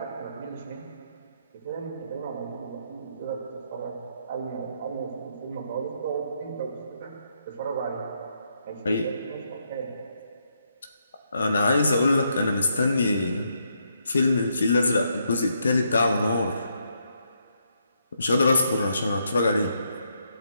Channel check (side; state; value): both; inverted; correlation -0.77